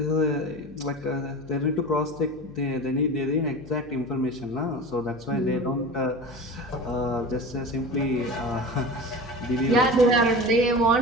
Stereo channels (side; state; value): left; noise; hum, 22 dB below the sound